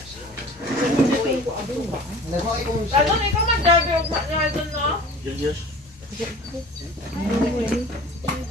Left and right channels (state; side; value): normal; both; correlation 0.43